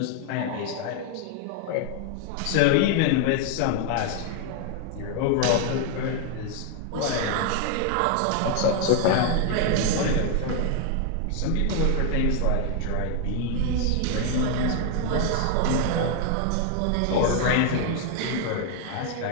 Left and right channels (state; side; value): different; both; correlation 0.00